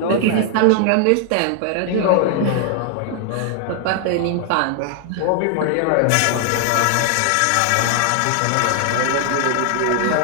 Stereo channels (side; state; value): both; different; correlation 0.00